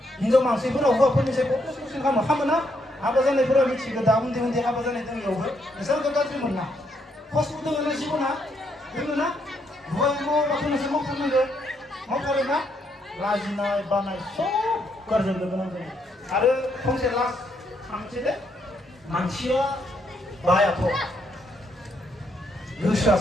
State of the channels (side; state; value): both; normal; correlation 0.75